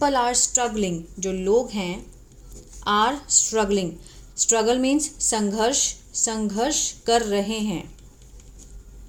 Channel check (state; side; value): identical; both; correlation 1.00